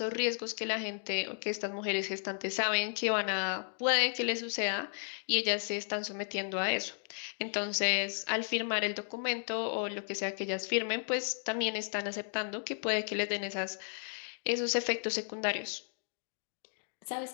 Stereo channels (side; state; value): right; silent; 55 dB below the other